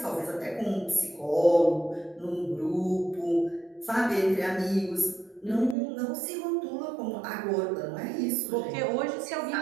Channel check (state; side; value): drops out; left; at 5.8 s